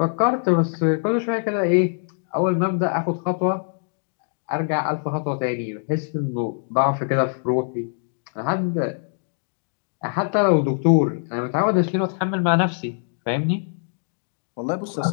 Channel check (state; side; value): silent; right; digital silence